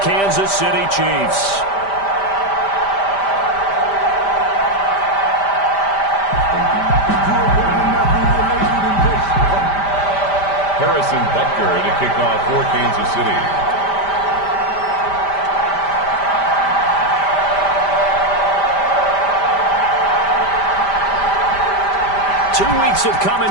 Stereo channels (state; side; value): late; right; 5.1 ms